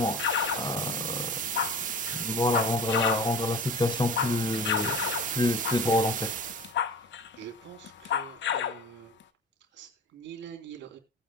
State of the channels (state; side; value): normal; both; correlation 0.36